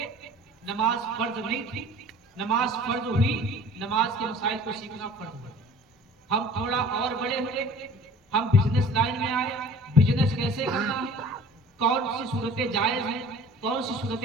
نماز فرض نہیں تھی، نماز فرض ہوئی، نماز کے مسائل کو سیکھنا فرض ہوا۔ ہم تھوڑا اور بڑے ہوئے، ہم بزنس لائن میں آئے، بزنس کیسے کرنا ہے، کون سی صورتیں جائز ہیں، کون سی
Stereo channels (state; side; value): normal; both; correlation 0.46